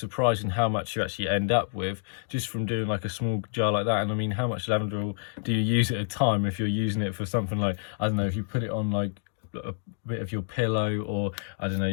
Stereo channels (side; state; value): right; silent; 59 dB below the other